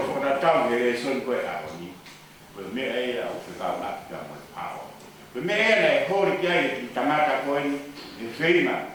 ona tau he son ko a ni. O mea e o fika na ka mo power. O mea ne hori kia i tamata ko i feina.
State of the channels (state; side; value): identical; both; correlation 1.00